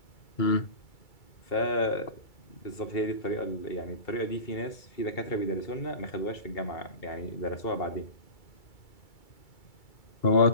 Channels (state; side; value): late; right; 2.3 ms